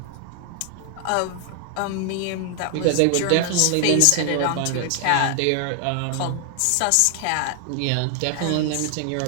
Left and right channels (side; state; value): both; different; correlation 0.00